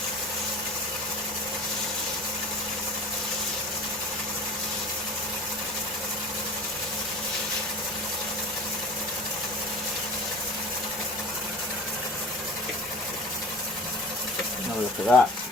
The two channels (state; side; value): normal; both; correlation 0.39